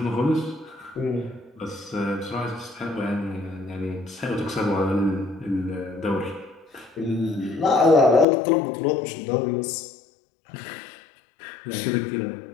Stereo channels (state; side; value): drops out; right; at 8.2 s